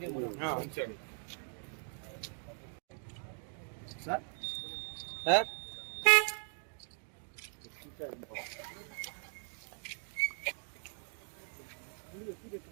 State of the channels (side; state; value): left; silent; 52 dB below the other